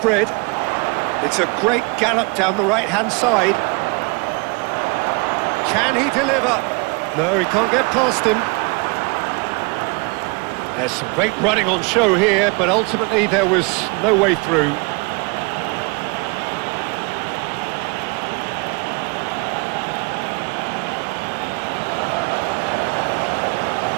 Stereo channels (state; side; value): quieter; left; 30.7 dB